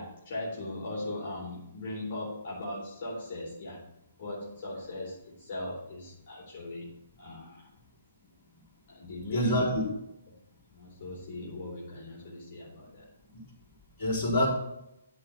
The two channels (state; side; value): inverted; both; correlation -0.53